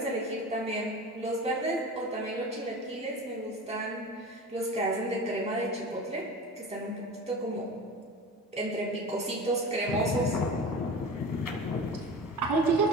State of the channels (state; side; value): normal; both; correlation 0.32